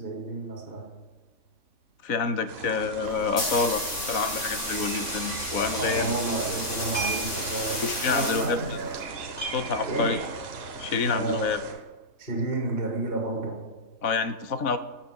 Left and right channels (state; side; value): late; right; 3.6 ms